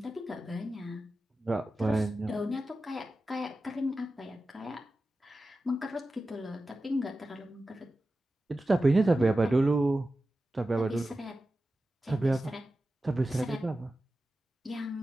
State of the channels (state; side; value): normal; both; correlation 0.93